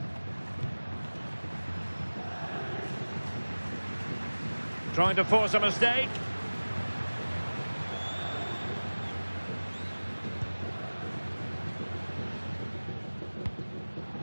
Trying to force a mistake.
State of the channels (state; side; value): inverted; both; correlation -1.00